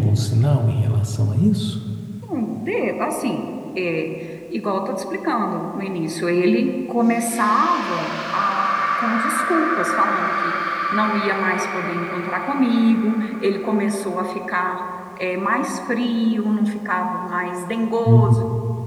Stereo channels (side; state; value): both; identical; correlation 1.00